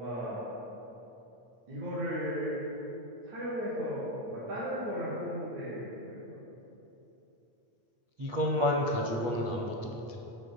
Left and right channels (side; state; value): left; late; 8.4 ms